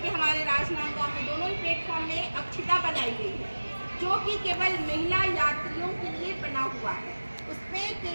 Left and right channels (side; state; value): both; inverted; correlation -1.00